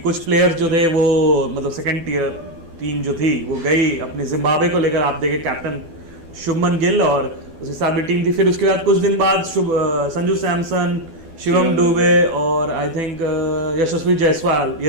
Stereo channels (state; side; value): late; left; 12 ms